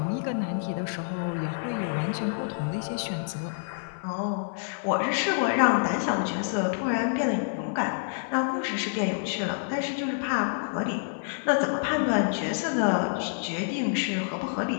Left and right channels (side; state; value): right; silent; 59 dB below the other